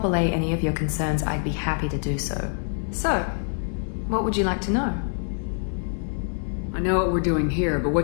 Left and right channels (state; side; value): silent; right; 61 dB below the other